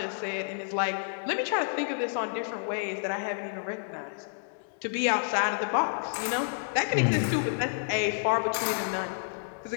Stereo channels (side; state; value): right; silent; digital silence